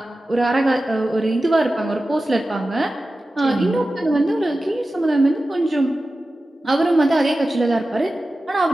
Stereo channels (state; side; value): normal; both; correlation 0.94